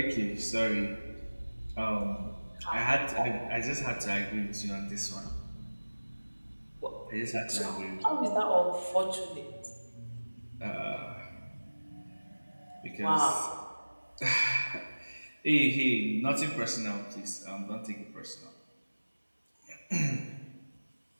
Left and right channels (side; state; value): both; inverted; correlation -1.00